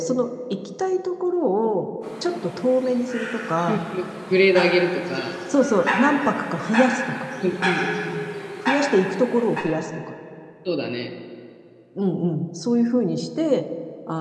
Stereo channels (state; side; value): identical; both; correlation 1.00